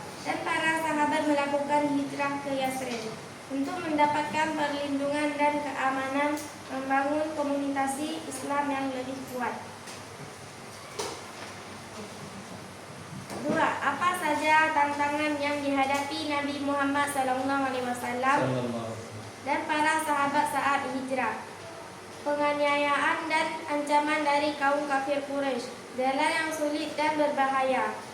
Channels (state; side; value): identical; both; correlation 1.00